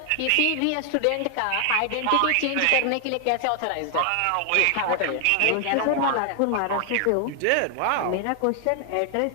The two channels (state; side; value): different; both; correlation 0.00